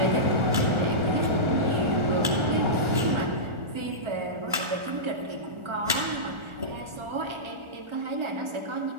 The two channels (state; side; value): late; left; 1.4 ms